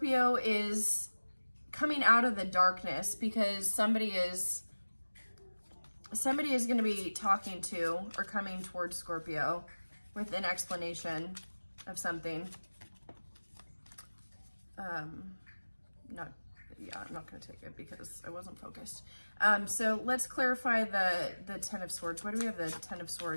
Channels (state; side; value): inverted; both; correlation -1.00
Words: is coming out of the darkness because somebody is going to be talking to or coming towards Scorpio with an explanation of something. I'm not going to take it because I wasn't focused. So let's clarify the Ten of Swords. Why do we have the Ten of